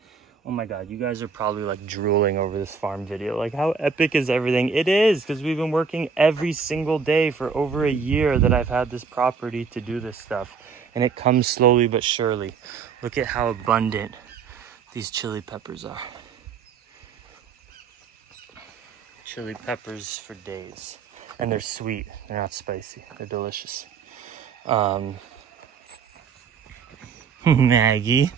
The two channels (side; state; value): left; quieter; 5.7 dB